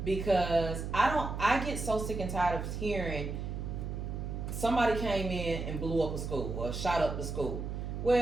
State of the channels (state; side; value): noise; right; hum, 5 dB below the sound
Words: because I get so sick and tired of hearing somebody came in and blew up a school or shot up the school.